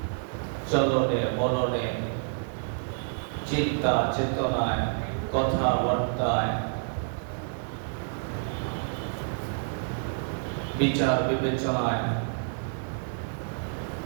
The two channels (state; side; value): silent; left; digital silence